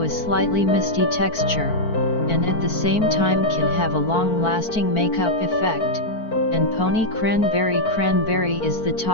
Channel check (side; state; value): right; late; 4.5 ms